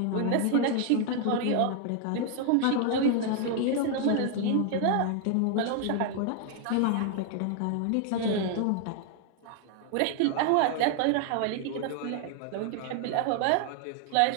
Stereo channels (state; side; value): different; both; correlation 0.00